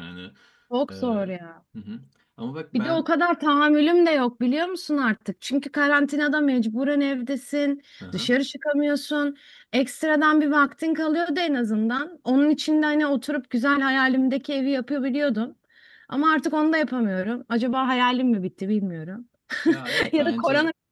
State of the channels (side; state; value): both; identical; correlation 1.00